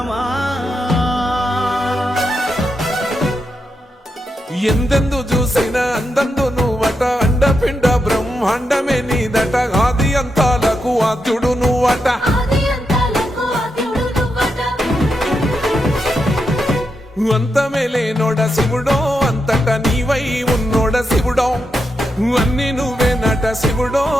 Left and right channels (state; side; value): normal; both; correlation 0.85